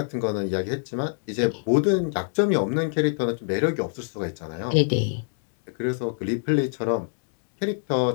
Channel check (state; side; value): silent; right; 61 dB below the other